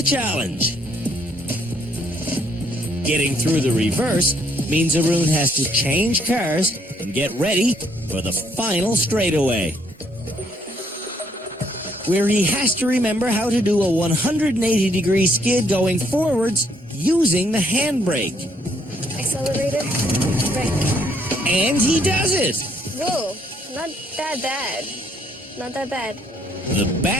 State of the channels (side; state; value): both; normal; correlation 0.69